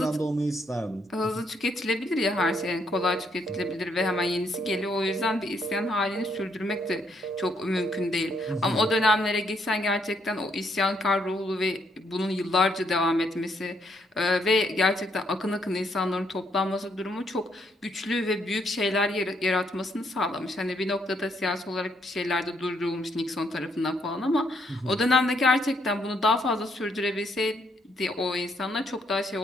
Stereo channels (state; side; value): normal; both; correlation 0.73